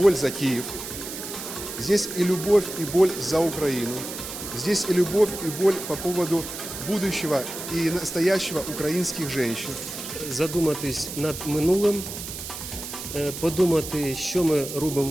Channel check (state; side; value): noise; right; hiss, 9 dB below the sound